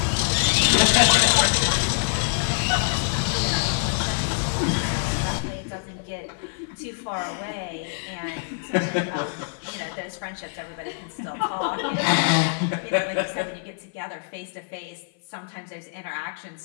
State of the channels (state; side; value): silent; right; 56 dB below the other